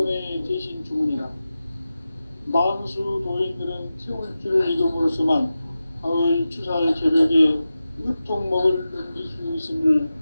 대신 주문이다. 만수 도인들은 태울 줄을 이름으로서만 가을 추살 개벽에 으통목을 넘길 수 있음을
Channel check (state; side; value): inverted; both; correlation -0.93